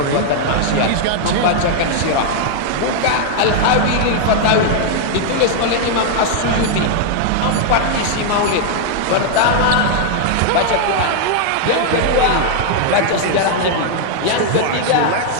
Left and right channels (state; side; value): different; both; correlation 0.00